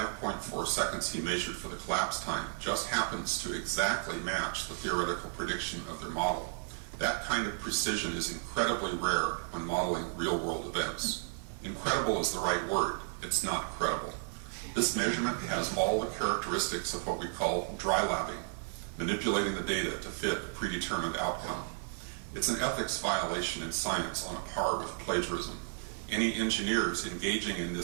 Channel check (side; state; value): left; silent; 55 dB below the other